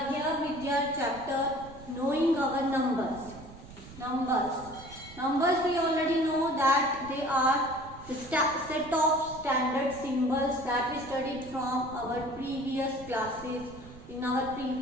here with your chapter Knowing Our Numbers. Numbers we already know that they are the set of standard symbols that we studied from our previous classes.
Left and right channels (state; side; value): noise; right; rumble, 17 dB below the sound